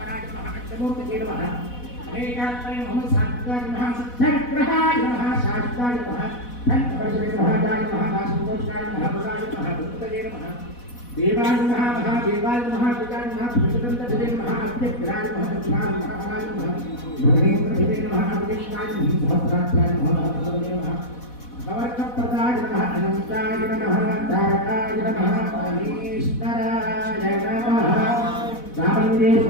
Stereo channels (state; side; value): late; right; 4.1 ms